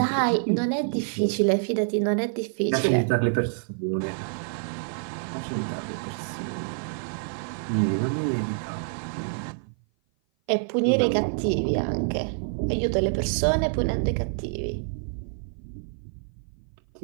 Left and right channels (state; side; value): silent; left; 56 dB below the other